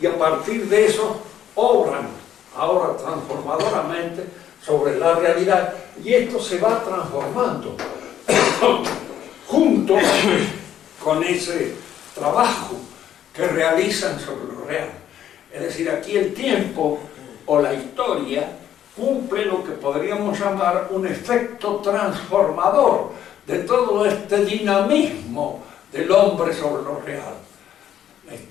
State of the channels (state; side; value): quieter; right; 10.6 dB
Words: y a partir de eso obran ahora transformadoramente sobre la realidad y esto se va transformando junto con ese trabajo que realizan sobre lo real. Es decir, aquí el tiempo o la historia cumple lo que podríamos llamar un efecto transformador de todo este dinamismo del hombre sobre lo real. La